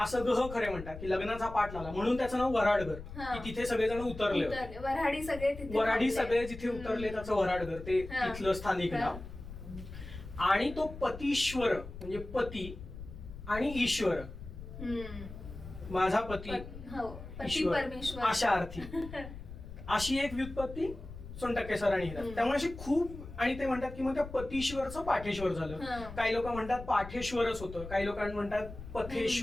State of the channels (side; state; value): left; noise; rumble, 12 dB below the sound